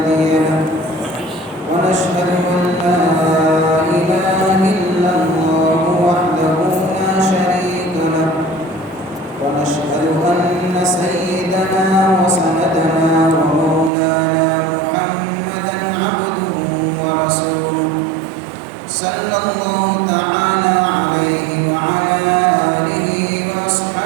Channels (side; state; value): left; drops out; at 13.9 s